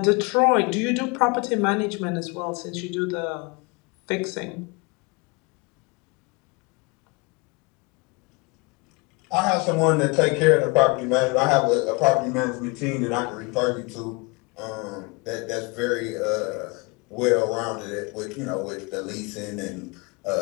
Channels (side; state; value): right; quieter; 27.5 dB